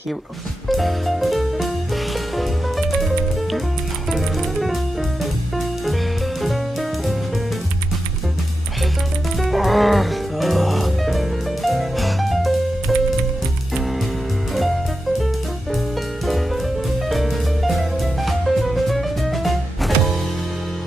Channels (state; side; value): normal; both; correlation 0.89